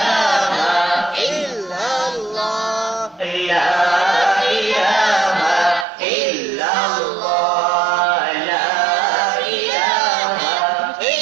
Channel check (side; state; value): left; drops out; at 5.9 s